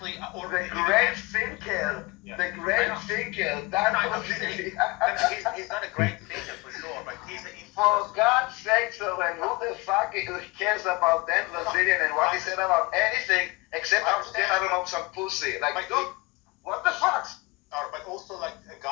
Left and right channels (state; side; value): quieter; right; 24.6 dB